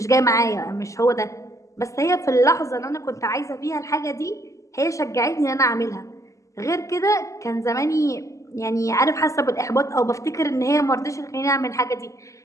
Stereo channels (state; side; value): late; right; 0.16 ms